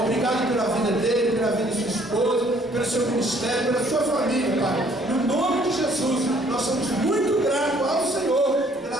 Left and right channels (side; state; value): both; normal; correlation 0.61